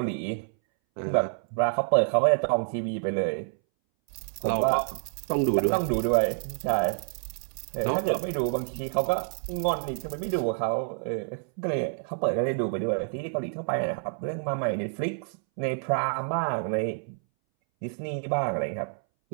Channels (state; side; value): silent; left; 59 dB below the other